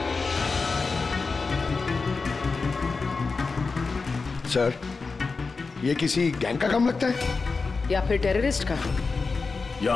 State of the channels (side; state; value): right; quieter; 4.3 dB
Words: सर, ये किसी गैंग का काम लगता है या फिर टेररिस्ट का?